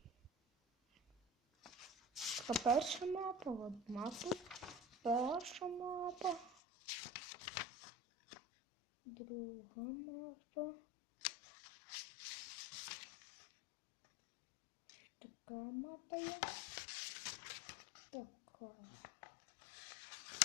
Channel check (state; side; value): drops out; right; at 6.6 s